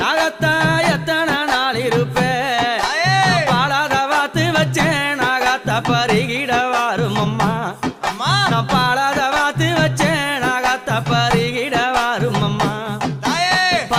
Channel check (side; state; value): both; identical; correlation 1.00